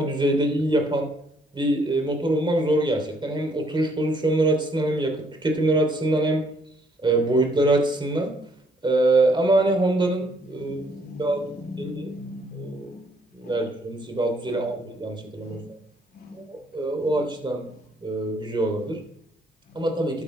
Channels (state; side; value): normal; both; correlation 0.67